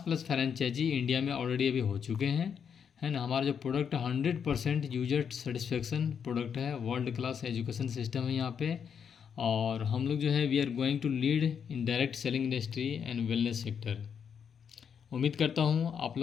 फ्रेंचाइजी इंडिया में ऑलरेडी अभी हो चुके हैं, है ना। हमारा जो प्रोडक्ट 100% यूजर सेटिस्फेक्शन प्रोडक्ट है, वर्ल्ड क्लास एजुकेशन सिस्टम है यहाँ पे। और हम लोग जो है we are going to lead in direct selling industry and wellness sector. उम्मीद करता हूँ आप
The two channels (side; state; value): right; quieter; 7.3 dB